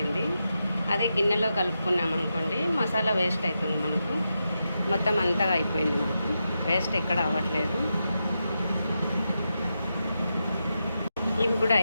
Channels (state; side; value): inverted; both; correlation -0.87